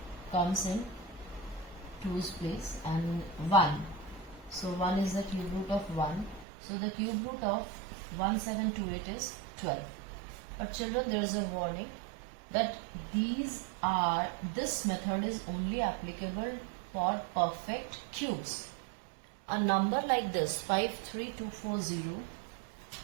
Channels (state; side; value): drops out; left; at 6.5 s